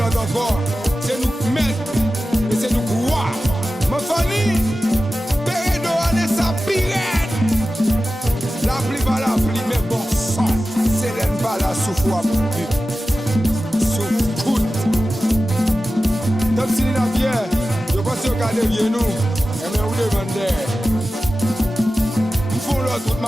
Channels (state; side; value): normal; both; correlation 0.94